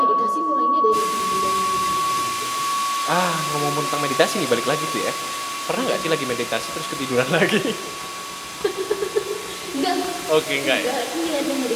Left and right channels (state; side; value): identical; both; correlation 1.00